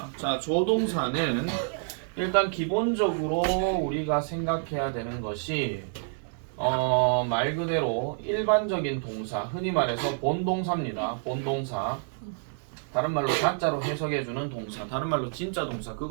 자, 조동사는 일단 기본적으로 우리가 생각해야 되는 것이 말 그대로 일반적인 동사, 흔히 말해서 본동사입니다. 본동사. 다른 말로 가짜로 해석해주는 동사, 다른 말로 진짜 동사,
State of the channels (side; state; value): left; silent; digital silence